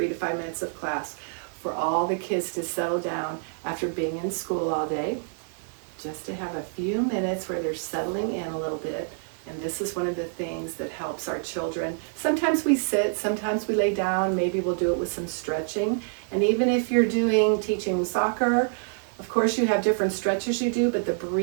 to 5 minutes of class for all the kids to settle down after being in school all day, just to have a few minutes where they're settling in a little bit. And this is one of the things that helps our children. Sometimes we sit, sometimes we lay down, maybe we'll do it with some stretching. And even if you're teaching soccer, of course you have different stretches you do, but the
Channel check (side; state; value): left; silent; digital silence